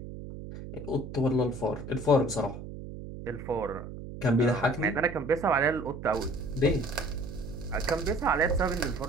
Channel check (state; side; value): noise; right; hum, 11 dB below the sound